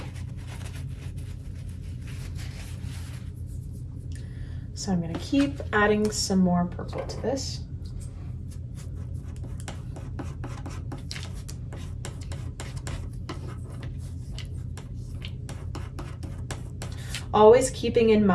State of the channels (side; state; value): both; identical; correlation 1.00